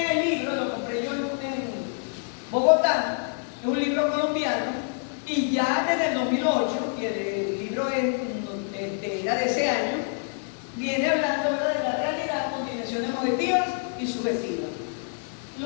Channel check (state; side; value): silent; right; 58 dB below the other